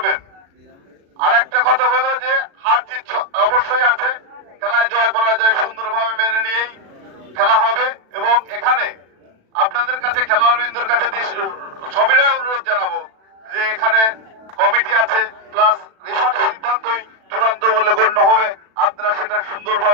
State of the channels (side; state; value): left; late; 36 ms